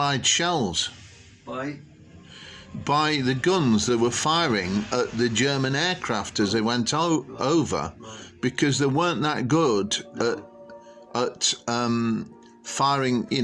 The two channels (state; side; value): identical; both; correlation 1.00